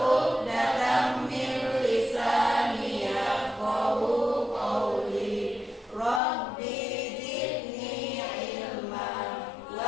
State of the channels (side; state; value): right; drops out; at 6.2 s